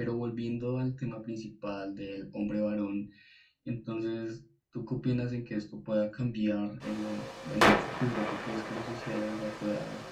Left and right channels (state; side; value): identical; both; correlation 1.00